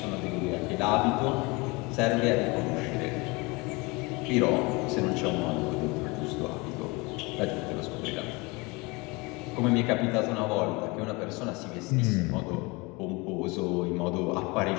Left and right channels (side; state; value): right; quieter; 26.0 dB